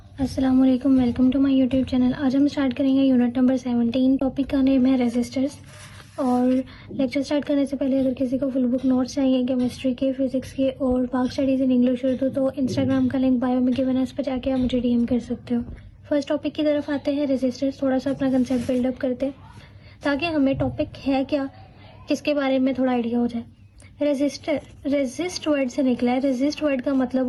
अस्सलाम वालेकुम, welcome to my YouTube channel. आज हम स्टार्ट करेंगे यूनिट नंबर 17। टॉपिक का नेम है रेजिस्टर्स। और लेक्चर स्टार्ट करने से पहले अगर किसी को फुल बुक नोट्स चाहिए केमिस्ट्री के, फिजिक्स के और बाकी स्टडीज इन इंग्लिश उर्दू, तो इंस्टाग्राम का लिंक बायो में गिवन है, उस पर जाके आप मुझे डीएम कर सकते हो। फर्स्ट टॉपिक की तरफ आते हैं, रेजिस्टर्स। थोड़ा सा अपना कंसेप्ट बिल्डअप करते हैं ताकि हमें टॉपिक है क्या इसके बारे में थोड़ा आइडिया हो जाए। रेजिस्टर रेजिस्ट वर्ड से निकला है। रेजिस्ट वर्ड का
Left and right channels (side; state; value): both; identical; correlation 1.00